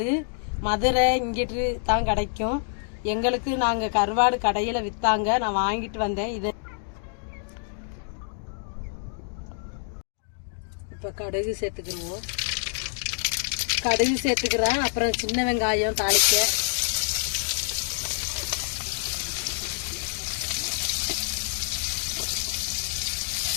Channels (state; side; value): silent; right; 60 dB below the other